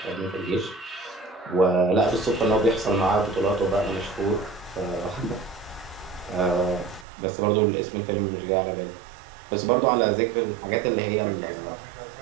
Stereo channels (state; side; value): drops out; left; at 7.1 s